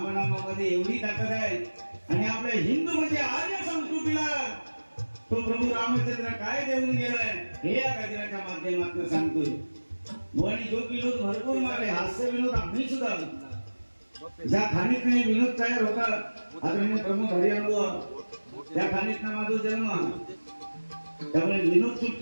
एवढी ताकद आहे आणि आपल्या हिंदू म्हणजे आर्य संस्कृतीला तो प्रभू रामचंद्र काय देऊन गेलाय हे या गजराच्या माध्यमातून सांगतोय. आणि जो विनोद भरपूर मारले हास्य विनोद आम्ही सुद्धा ज्या खाणीत नाही विनोद तयार होता आदरणीय प्रमुख हरिअनुभव त्या खाणीत ना माझा जन्म. त्यामुळे विनोद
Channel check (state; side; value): inverted; both; correlation -1.00